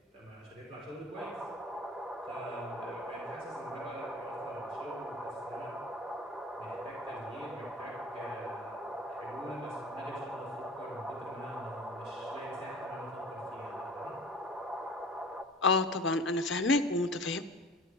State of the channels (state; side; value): normal; both; correlation 0.42